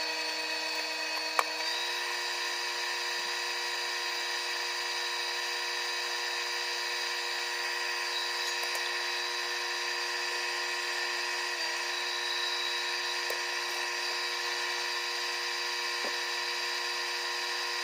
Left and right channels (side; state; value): both; identical; correlation 1.00